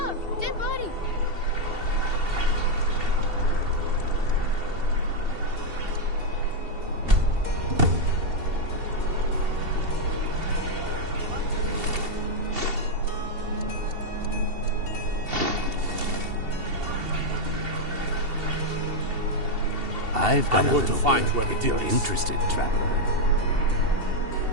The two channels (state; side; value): late; left; 2.7 ms